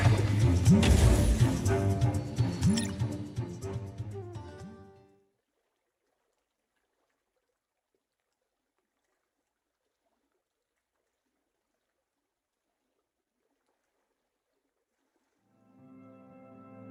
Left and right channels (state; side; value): identical; both; correlation 1.00